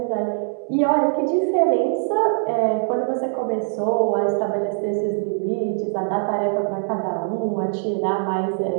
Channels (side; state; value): left; silent; 64 dB below the other